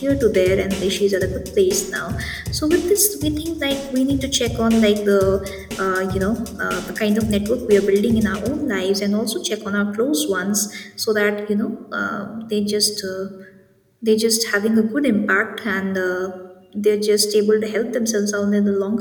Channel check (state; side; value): identical; both; correlation 1.00